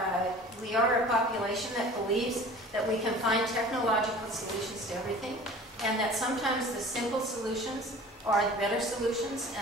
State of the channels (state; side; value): normal; both; correlation 0.43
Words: a population that believes that we can find technological solutions to everything, and that sometimes the simple solutions are the better solutions,